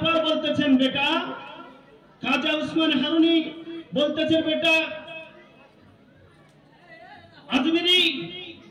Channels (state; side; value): identical; both; correlation 1.00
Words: পর বলতেছেন বেটা, খাজা উসমান হারুনি বলতেছেন বেটা আজমিরি